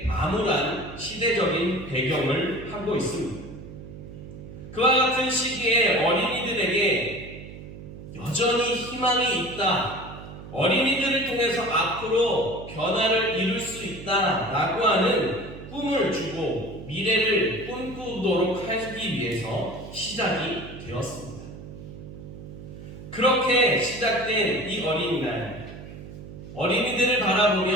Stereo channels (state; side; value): noise; right; hum, 14 dB below the sound